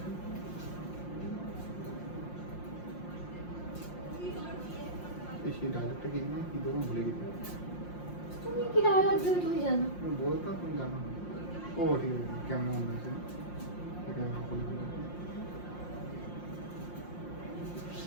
সেই ডায়লগটা কি না কি তখন ভুলে গেছি। তুমি কি ডায়লগ দেবে তুমি জানো বলতাম তুমি জানো। ও ঠিক আছে কেমন মনে হয়েছে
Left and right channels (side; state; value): right; late; 5.7 ms